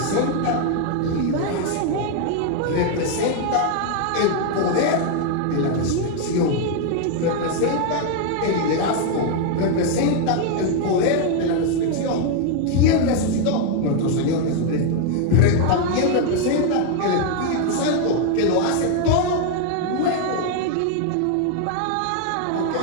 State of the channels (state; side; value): different; both; correlation 0.01